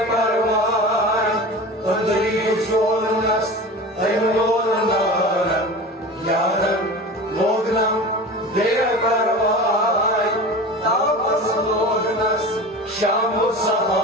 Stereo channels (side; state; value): both; normal; correlation 0.33